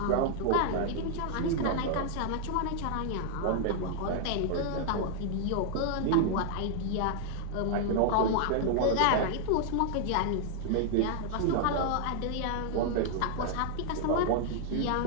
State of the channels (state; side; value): different; both; correlation -0.01